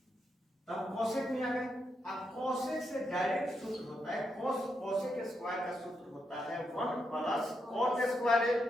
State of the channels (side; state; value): both; normal; correlation 0.82